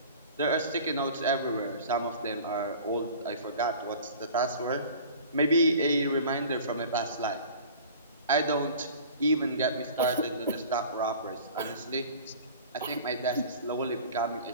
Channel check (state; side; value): inverted; both; correlation -0.43